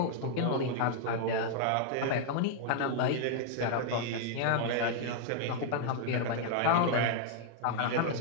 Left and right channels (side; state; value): both; different; correlation 0.00